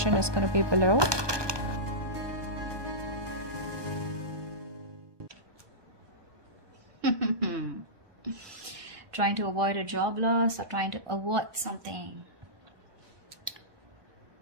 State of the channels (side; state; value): left; late; 1.2 ms